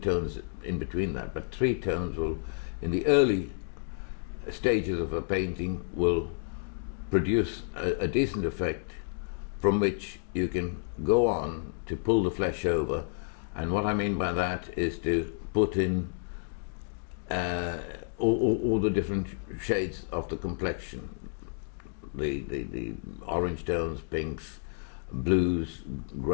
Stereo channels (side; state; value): right; silent; digital silence